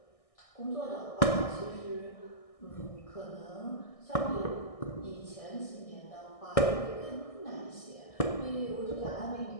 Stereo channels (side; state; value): right; late; 1.6 ms